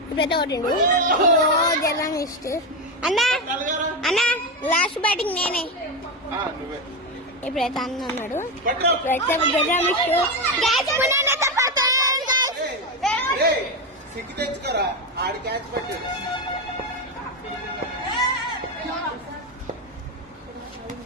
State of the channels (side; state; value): both; normal; correlation 0.12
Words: ఇప్పుడైతే కొట్టిండు. జర్రం ఇష్ట అన్న అన్న లాస్ట్ బ్యాటింగ్ నేనే. ఇప్పుడైతే అన్న అన్నాడు. ఇప్పుడైతే జర్రం ఇష్ట క్యాచ్